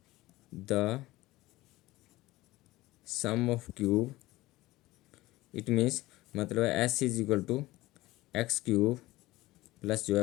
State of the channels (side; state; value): right; quieter; 18.5 dB